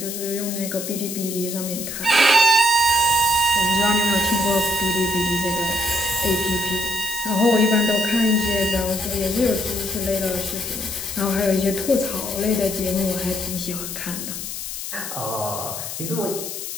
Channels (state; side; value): noise; left; hiss, 7 dB below the sound